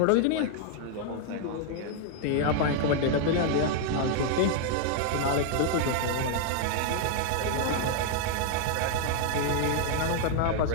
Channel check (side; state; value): both; different; correlation 0.00